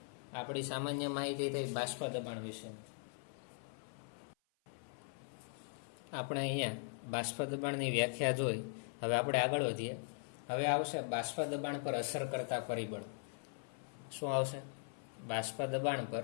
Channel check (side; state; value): right; silent; 51 dB below the other